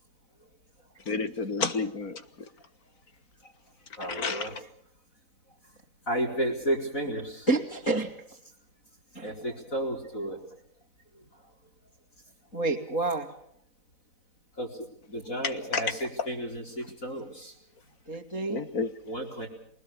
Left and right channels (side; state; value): right; late; 4.0 ms